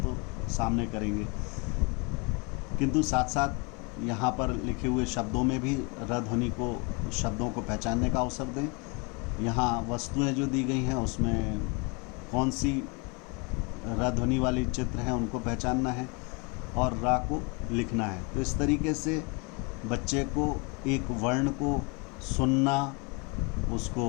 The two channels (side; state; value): right; quieter; 31.3 dB